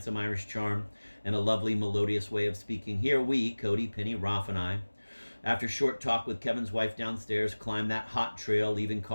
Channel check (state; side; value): inverted; both; correlation -1.00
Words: Irish charm, and a lovely, melodious way of speaking. Here we, Cody, Penny, Rolf, and I, after short talk with Kevin's wife downstairs, climb that hot trail, leaving